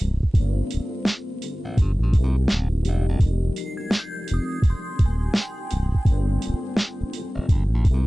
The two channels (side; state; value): both; normal; correlation 0.98